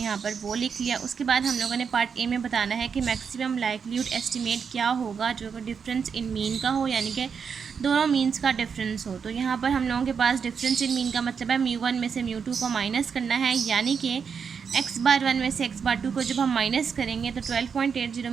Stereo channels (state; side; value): quieter; left; 6.4 dB